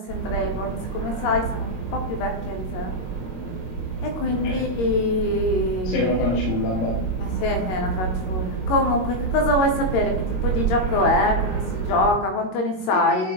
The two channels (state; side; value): late; right; 22 ms